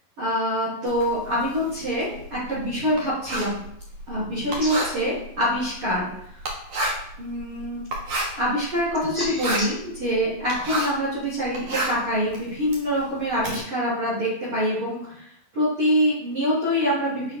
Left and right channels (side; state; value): left; late; 11 ms